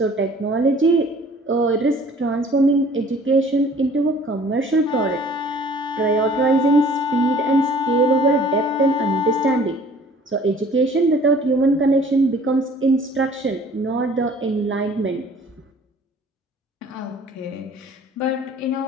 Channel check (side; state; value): both; normal; correlation 0.52